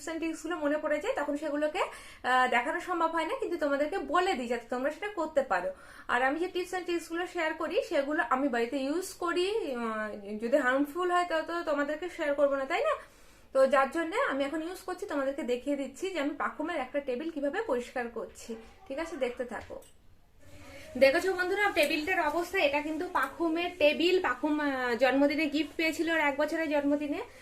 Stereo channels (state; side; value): identical; both; correlation 1.00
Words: এন্ড ট্রিক্স গুলো মনে পড়ে যায়, তখন সেগুলোকে দেখানো সম্ভব হয় না, কিন্তু তোমাদেরকে বলে দিই যাতে তোমরা সেটা করতে পারো। আর আমি যে টিপস এন্ড ট্রিক্স গুলো শেয়ার করি সেগুলো আমি বাড়িতে ইউজ করি। যদি হার্মফুল হয় তত তোমাদেরকে শেয়ার করবো না, তাই না? তো যার জন্য আমি এখন ইউজ করছি, তোমাদেরকে দেখিয়ে দিচ্ছি যে আমি পাখুমের একটা টেবিল কিভাবে পরিষ্কার করছি। ঠিক আছে, দেখতে থাকো। দেখেছো বন্ধুরা টেবিলটার অবস্থা? এটা কিন্তু পাখুমের টেবিল। পাখুম জন্মদিনে গিফট পেয়েছিল ওর 1 বছরের জন্মদিনে।